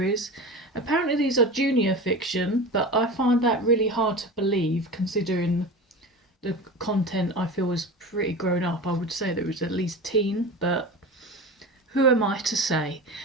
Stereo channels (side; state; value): both; normal; correlation 0.30